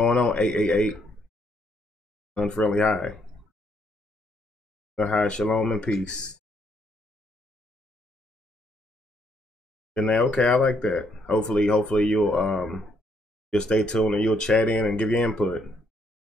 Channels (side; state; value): both; normal; correlation 0.72